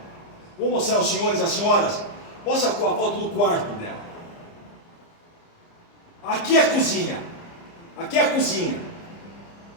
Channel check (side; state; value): right; late; 30 ms